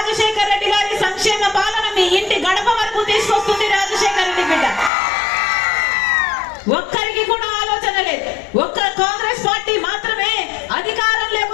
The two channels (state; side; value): drops out; right; at 4.9 s